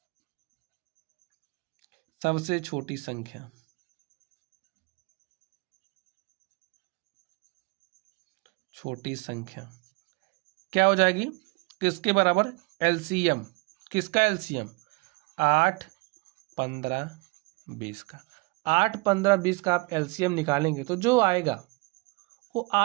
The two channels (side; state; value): left; quieter; 27.6 dB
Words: सबसे छोटी संख्या। छोटी संख्या क्या हो जाएगी, किसके बराबर, एलसीएम। किसका एलसीएम, 8, 15, 20 का। 8, 15, 20 का आप एलसीएम निकालेंगे तो जो आएगा वो